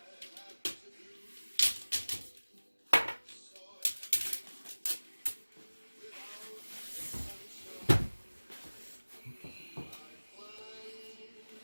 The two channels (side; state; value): both; inverted; correlation -1.00